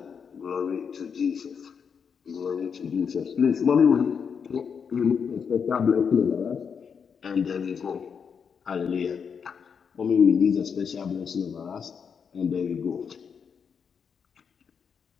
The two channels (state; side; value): quieter; right; 6.6 dB